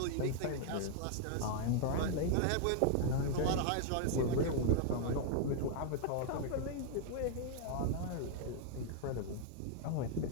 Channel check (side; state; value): both; different; correlation 0.00